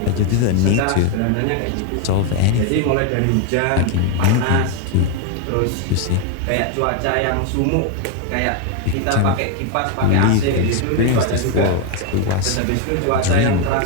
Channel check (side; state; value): both; different; correlation 0.01